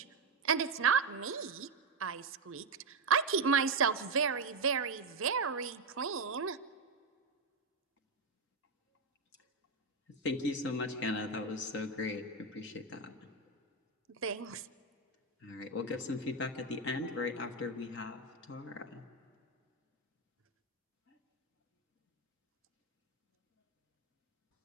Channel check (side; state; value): left; quieter; 3.6 dB